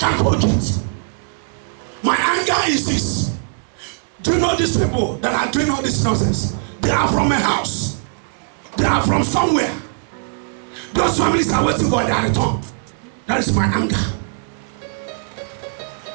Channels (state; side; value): silent; left; digital silence